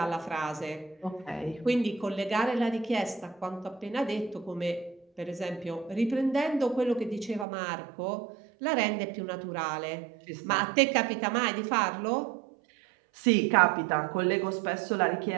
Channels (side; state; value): left; drops out; at 7.5 s